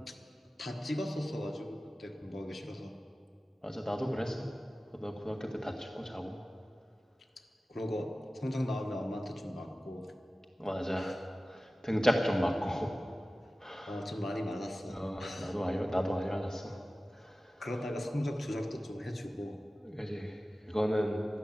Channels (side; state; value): both; normal; correlation 0.96